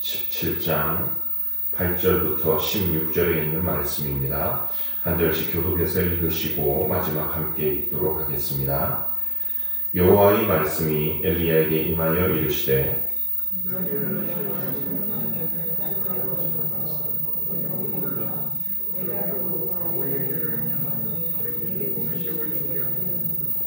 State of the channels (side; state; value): both; normal; correlation 0.60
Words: 17장 8절부터 16절에 있는 말씀입니다. 한 절씩 교독해서 읽으시고 마지막 함께 읽도록 하겠습니다. 여호와의 말씀이 엘리야에게 임하여 이르시되